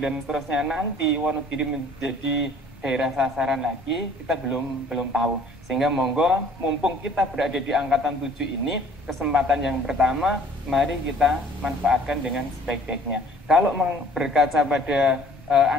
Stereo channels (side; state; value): both; normal; correlation 0.54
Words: seterusnya nanti Wonogiri menjadi daerah sasaran lagi, kita belum tahu. Sehingga monggo, mumpung kita berada di angkatan 7 ini, kesempatan yang pertama mari kita manfaatkan dengan sebaik-baiknya. Kalau berkaca pada